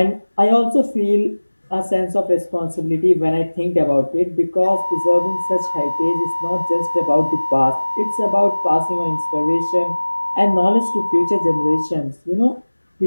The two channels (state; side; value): inverted; both; correlation -1.00